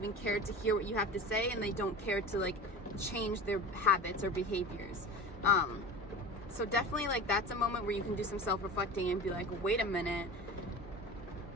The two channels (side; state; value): both; normal; correlation 0.33